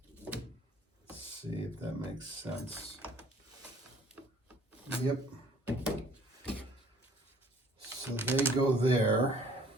Let's see if that makes sense. Yep. So they go there.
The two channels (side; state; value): both; normal; correlation 0.56